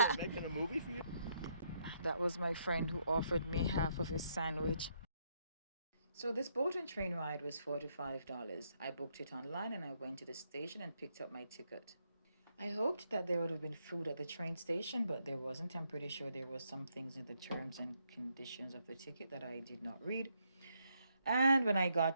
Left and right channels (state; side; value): inverted; both; correlation -0.75